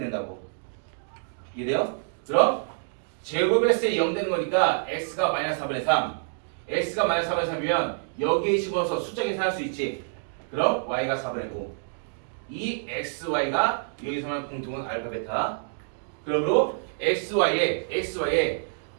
이해돼요? 그럼 제곱했을 때 0 되는 거니까 x가 마이너스 4분의 3 x가 마이너스 4분의 3이면 여기에 집어넣어서 숫자 계산할 수 있지. 그럼 y가 4분의 5 이 xy가 여기서만 공통은 알파 베타. 그러므로 xy에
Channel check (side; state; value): left; silent; digital silence